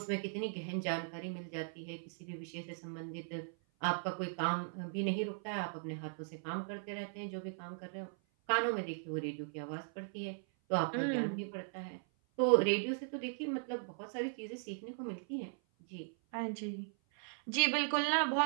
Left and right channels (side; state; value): left; silent; 52 dB below the other